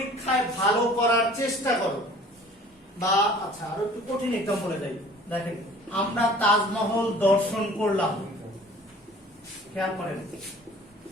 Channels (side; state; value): both; normal; correlation 0.49